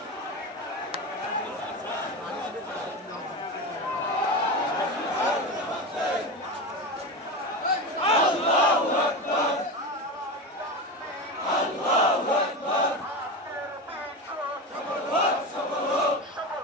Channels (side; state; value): both; normal; correlation 0.22